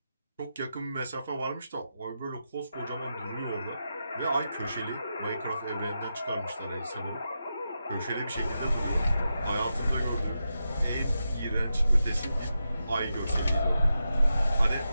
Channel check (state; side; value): inverted; both; correlation -0.88